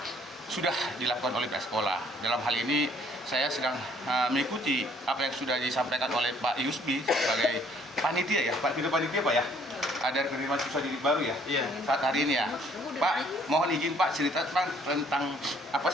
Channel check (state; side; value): normal; both; correlation 0.61